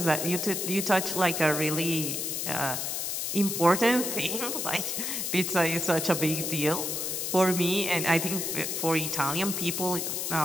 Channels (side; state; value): left; noise; hiss, 2 dB below the sound